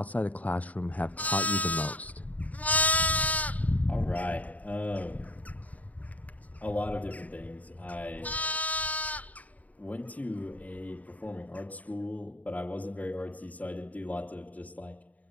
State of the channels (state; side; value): late; right; 0.072 ms